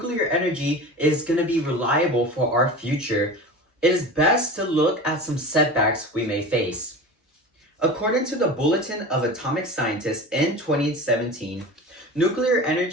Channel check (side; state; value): both; normal; correlation 0.32